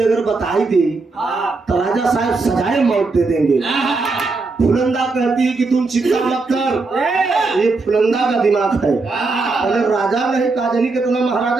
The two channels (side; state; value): left; quieter; 3.8 dB